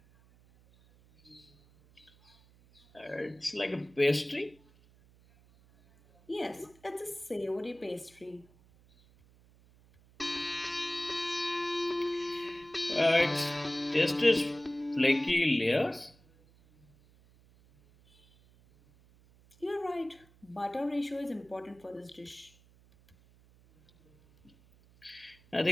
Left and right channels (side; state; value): right; noise; hum, 28 dB below the sound